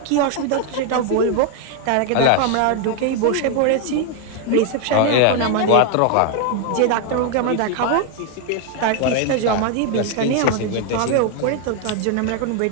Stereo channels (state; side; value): different; both; correlation 0.00